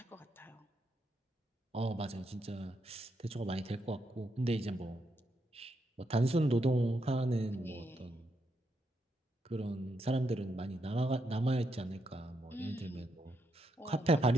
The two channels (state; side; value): normal; both; correlation 0.80